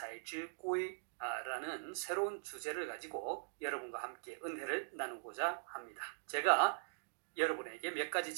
새로운 주제를 가지고 여러분과 함께 은혜를 나누고자 합니다. 제가 여러분에게 몇 가지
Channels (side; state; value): left; silent; digital silence